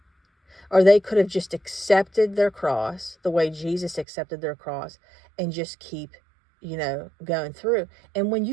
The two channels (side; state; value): left; drops out; at 4.0 s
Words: or they could have just accepted their cross the way Jesus accepted their cross and just keep, going through. And when